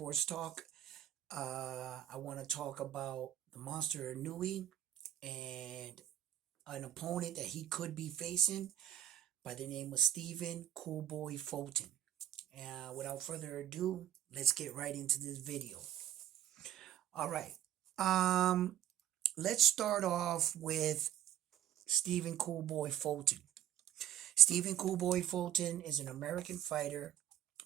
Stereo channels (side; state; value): left; quieter; 11.7 dB